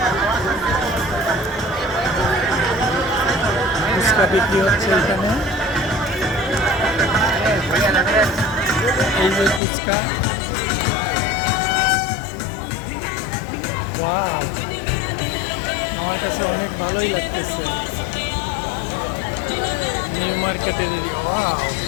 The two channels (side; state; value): right; drops out; at 9.6 s